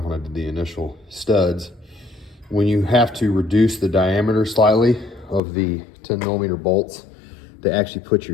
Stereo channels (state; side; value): drops out; right; at 5.4 s